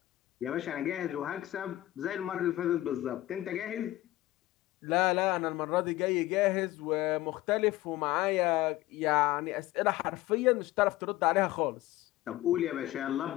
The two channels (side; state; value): right; quieter; 16.5 dB